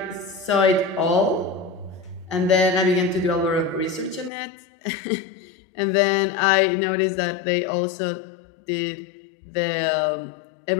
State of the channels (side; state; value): right; drops out; at 4.3 s